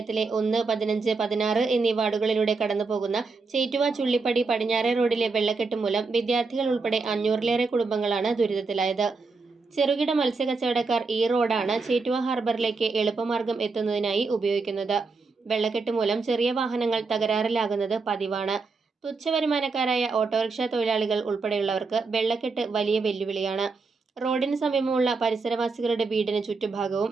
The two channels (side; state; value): left; quieter; 4.2 dB